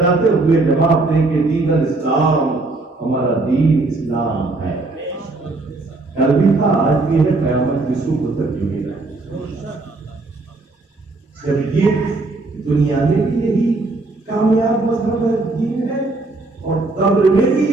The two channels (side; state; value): left; quieter; 3.3 dB